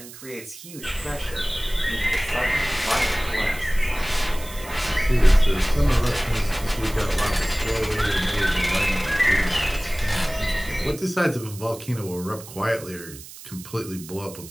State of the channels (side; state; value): right; noise; hiss, 16 dB below the sound